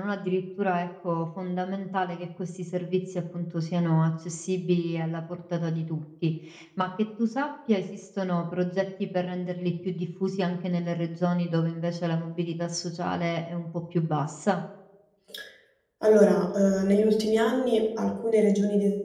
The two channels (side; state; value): both; identical; correlation 1.00